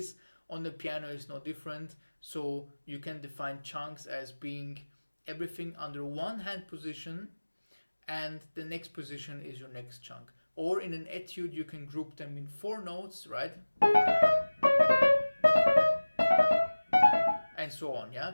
On the piano is no different. So you can define chunks as being everything under one hand position, and the next position is your next chunk. Or in an etude, you can group them in 4 notes, right? And so on, yeah?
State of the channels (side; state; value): both; inverted; correlation -1.00